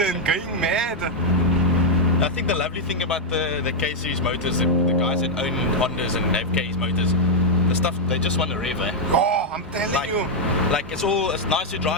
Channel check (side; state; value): both; normal; correlation -0.02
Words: going mad. I think the lovely thing about the K-series motors, the guys that own Hondas and have K's motors, the stuff, they just want to rev, eh? Oh, I'm telling you. Like it's nice to